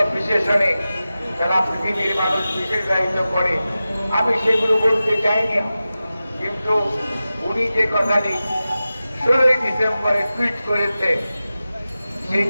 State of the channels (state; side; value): inverted; both; correlation -0.95